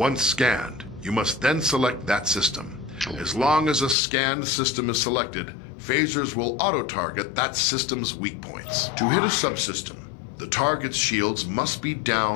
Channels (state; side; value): drops out; right; at 4.0 s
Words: scanned, you must then select that system. As long as a scanned system is selected, phasers will auto-target that system's weak points. To hit a subsystem, the target's shields must be down